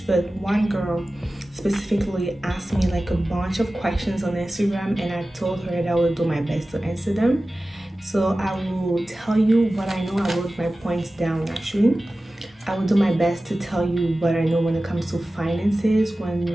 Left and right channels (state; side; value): normal; both; correlation 0.96